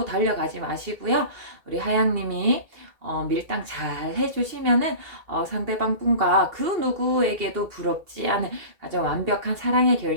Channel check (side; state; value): left; late; 2.8 ms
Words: 달려가지 마시고요. 우리 하양님이 밀당 잘 해주시면은 상대방 분과 그 누구에게도 부럽지 않은 아주 완벽한 사랑의